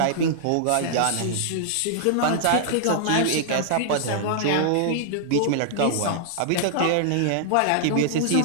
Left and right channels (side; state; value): both; different; correlation -0.01